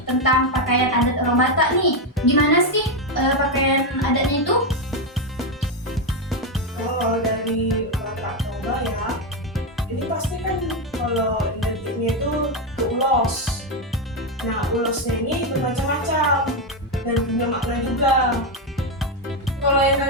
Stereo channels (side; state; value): both; normal; correlation 0.06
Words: tentang pakaian adat orang Batak nih. Gimana sih pakaian adatnya itu? Kalau dari Batak Toba ya, ini pasti kan kalau identiknya itu ke ulos. Nah, ulosnya ini bermacam-macam dan punya makna juga. Kalau yang